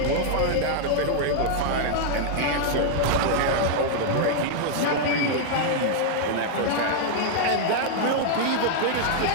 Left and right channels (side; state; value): both; different; correlation -0.01